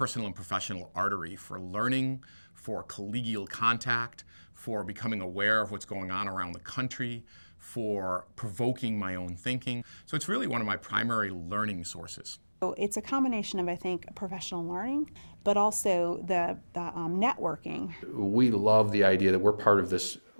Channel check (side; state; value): both; inverted; correlation -1.00